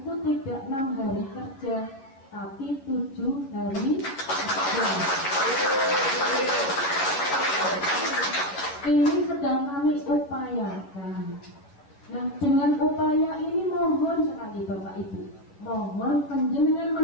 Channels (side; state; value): right; late; 11 ms